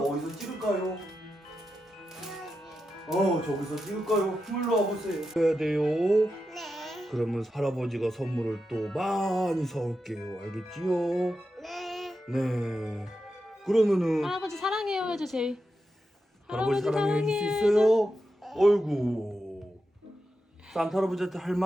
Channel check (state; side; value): normal; both; correlation 0.88